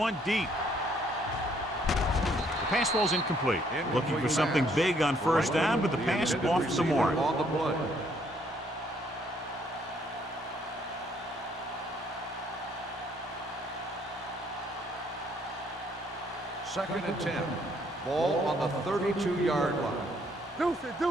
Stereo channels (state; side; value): normal; both; correlation 0.67